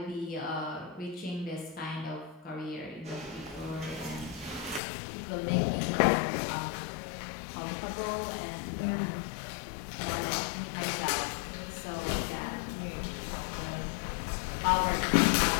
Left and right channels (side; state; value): right; drops out; at 4.8 s